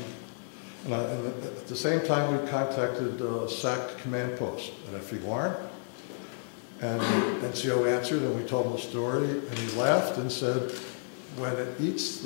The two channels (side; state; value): right; silent; digital silence